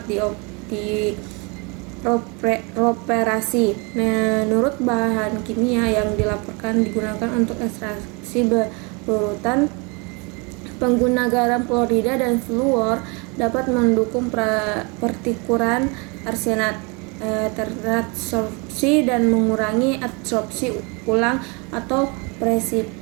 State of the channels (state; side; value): quieter; left; 30.6 dB